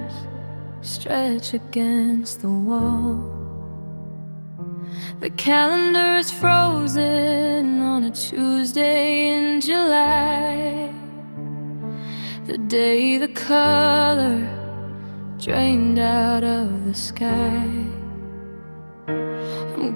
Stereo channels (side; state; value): both; inverted; correlation -1.00